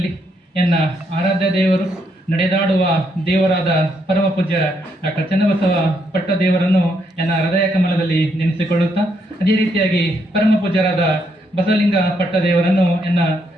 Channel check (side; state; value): both; normal; correlation 0.76